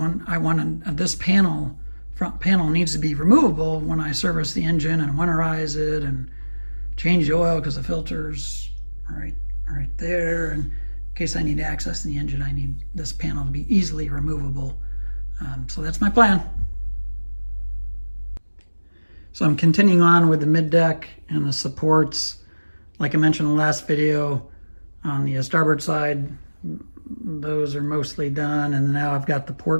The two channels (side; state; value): both; inverted; correlation -1.00